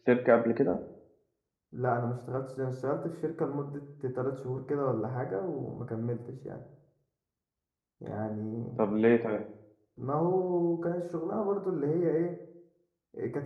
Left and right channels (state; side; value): identical; both; correlation 1.00